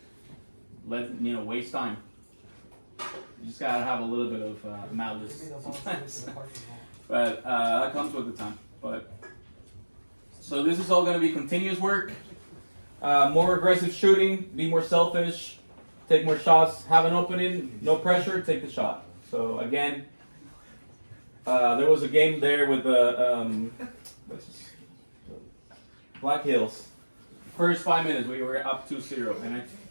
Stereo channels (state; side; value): inverted; both; correlation -1.00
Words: Waste time. You just gotta have a little bit of malice sometimes. But that comes with the time. So this is all gonna be continuous work. More aggressive shooting, be more selfish, take more shots, have an opening, no pressure, take the shot. So again, there was a game there with the Black Hills. First 5 minutes, we were up 2-0, and I